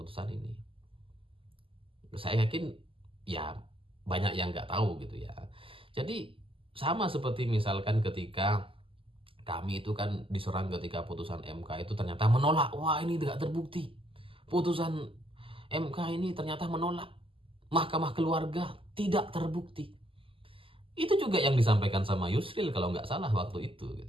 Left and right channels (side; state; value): left; late; 0.26 ms